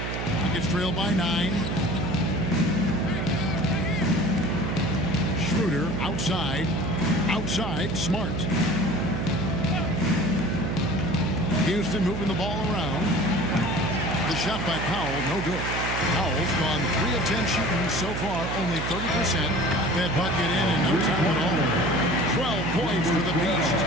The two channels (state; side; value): noise; right; hum, 4 dB below the sound